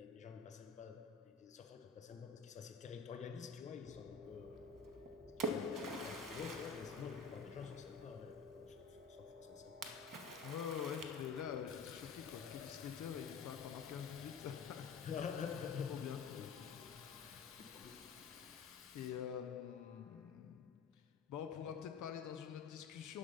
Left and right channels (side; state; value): right; quieter; 4.9 dB